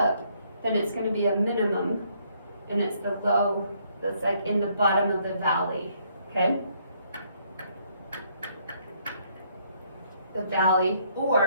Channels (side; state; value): both; inverted; correlation -0.69